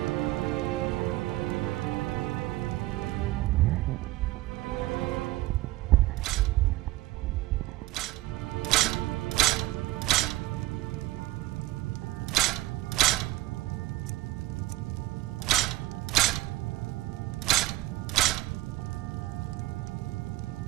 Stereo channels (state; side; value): quieter; left; 18.5 dB